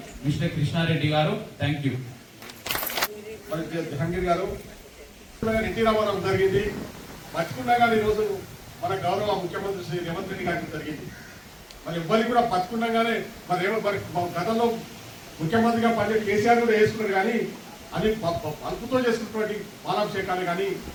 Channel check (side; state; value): both; identical; correlation 1.00